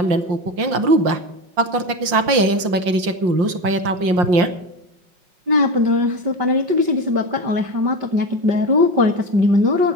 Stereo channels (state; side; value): late; left; 5.7 ms